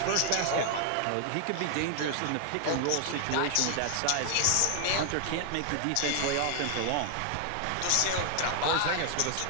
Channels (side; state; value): both; different; correlation 0.00